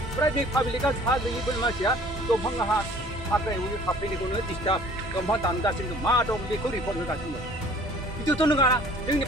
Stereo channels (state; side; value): normal; both; correlation 0.52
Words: बे पाब्लिकआ हा गैयिफोर मानसिया दंफां हाग्रायाव थाफैनायखौनो डिस्टार्ब दंफां दानगासिनो मा दं बेखौ रिपर्ट होगासिनो बिदिथ' नङा जोंनि